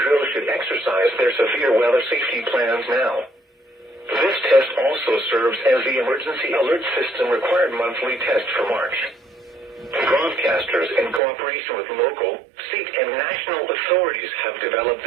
should exercise their severe weather safety plans now. This test also serves as the Emergency Alert System required monthly test for March. Broadcasters, in cooperation with local, state, and national authorities, have developed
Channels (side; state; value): left; drops out; at 11.2 s